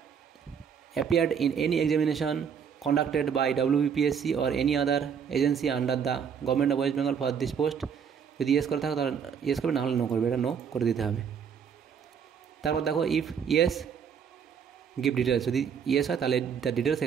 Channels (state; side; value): quieter; left; 7.2 dB